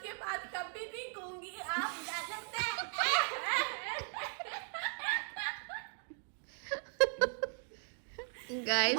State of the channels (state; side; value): silent; left; 53 dB below the other